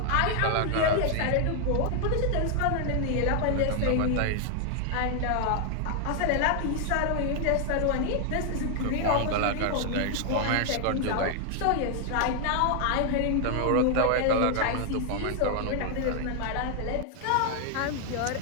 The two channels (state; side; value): different; both; correlation 0.00